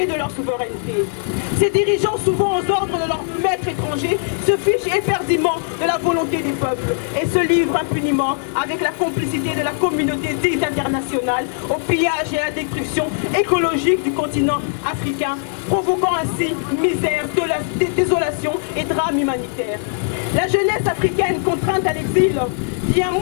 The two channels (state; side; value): silent; right; 59 dB below the other